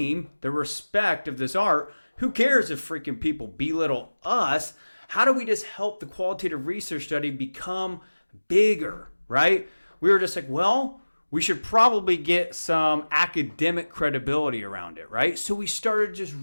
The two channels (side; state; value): both; inverted; correlation -1.00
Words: the respect of this art, who cares if freaking people belittle us? How do we just help the qualitative research study become bigger, right? We were just like, well, we should probably get some academic credibility around it, right? So we started just